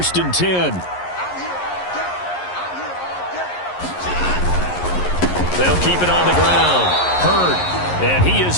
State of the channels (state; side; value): late; right; 11 ms